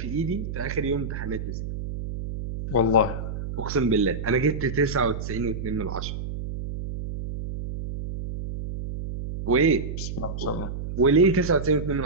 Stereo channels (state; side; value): noise; right; hum, 6 dB below the sound